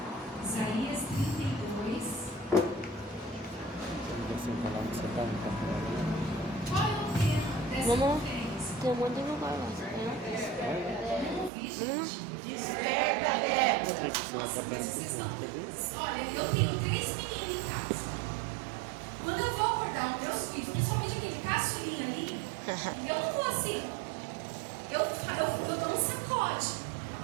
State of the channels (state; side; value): drops out; left; at 11.5 s